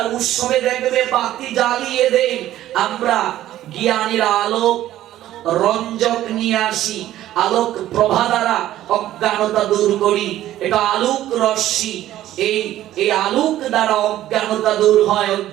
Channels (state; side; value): quieter; left; 13.5 dB